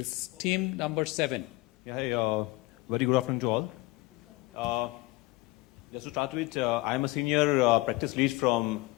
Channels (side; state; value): right; quieter; 21.8 dB